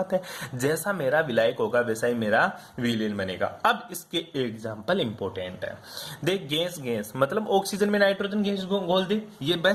है। जैसा मेरा विलायक होगा वैसा ही मेरा विलयन बनेगा। अब इसके एग्जाम्पल इंपॉर्टेंट है। देख, गैस गैस मतलब ऑक्सीजन में नाइट्रोजन गैस घोल दे, ये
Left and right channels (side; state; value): both; identical; correlation 1.00